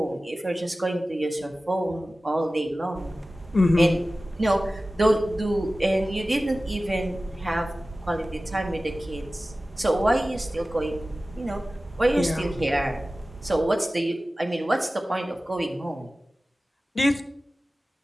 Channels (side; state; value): both; normal; correlation 0.96